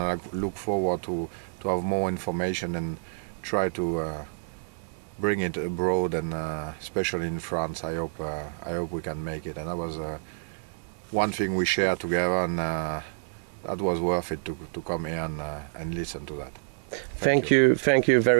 I look forward to have more information and try to bring it abroad, and especially in France. I hope we can make it. And that was one thing we shared together, and that was worth it to come here and listen to that. Thank you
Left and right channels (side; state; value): left; silent; digital silence